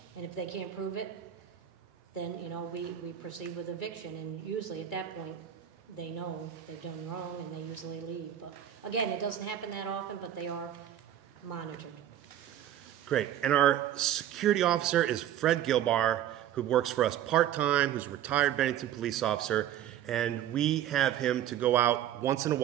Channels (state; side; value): quieter; left; 11.0 dB